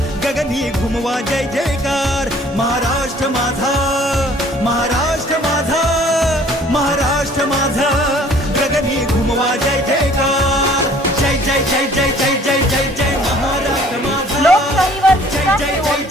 गगनी घुमवा जय जयकार महाराष्ट्र माझा महाराष्ट्र माझा महाराष्ट्र माझा गगनी घुमवा जय जयकार जय जय जय जय जय जय जय जय महाराष्ट्र माझा लोकशाहीवर जय जय जय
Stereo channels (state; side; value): normal; both; correlation 0.54